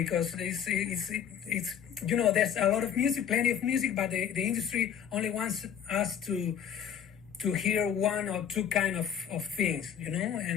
it's there's a lot of music, plenty of music, but the industry only wants us to hear one or two kind of things,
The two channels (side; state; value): right; quieter; 8.7 dB